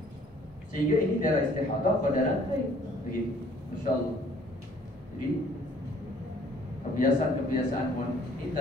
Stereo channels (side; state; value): both; normal; correlation 0.59